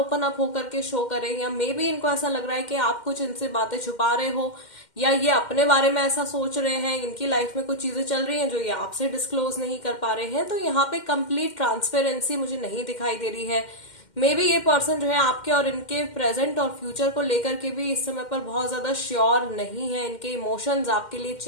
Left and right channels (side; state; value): right; late; 2.1 ms